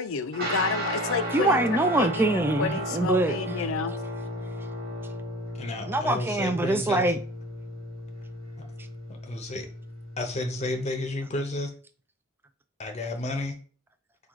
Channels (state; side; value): normal; both; correlation 0.43